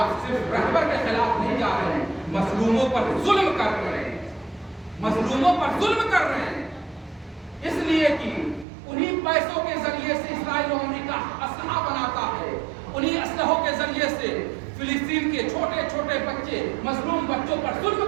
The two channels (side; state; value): left; drops out; at 8.7 s